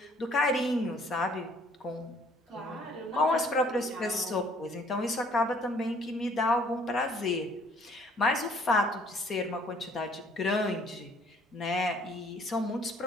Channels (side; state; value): both; normal; correlation 0.60